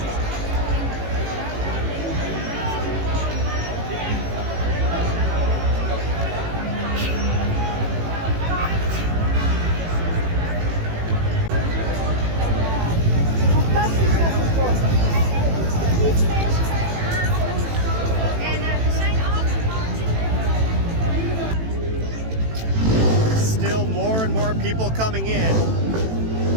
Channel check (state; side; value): late; left; 18 ms